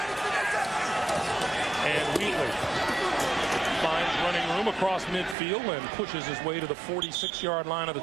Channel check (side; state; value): left; drops out; at 5.4 s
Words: And Wheatley finds running room across midfield and pushes his way to the 46-yard line of the